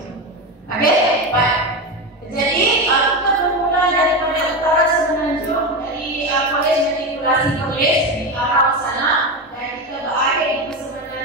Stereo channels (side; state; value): both; normal; correlation 0.17